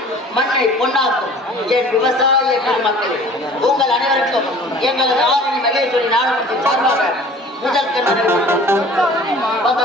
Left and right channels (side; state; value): both; normal; correlation 0.47